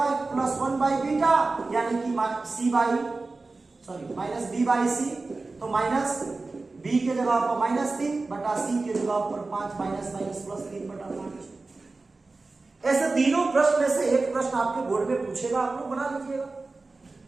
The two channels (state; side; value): quieter; left; 3.6 dB